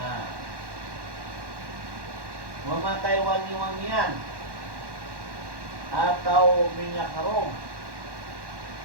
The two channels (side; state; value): left; late; 1.1 ms